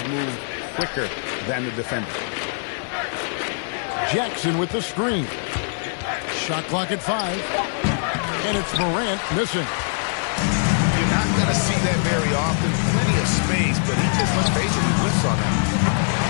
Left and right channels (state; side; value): silent; right; digital silence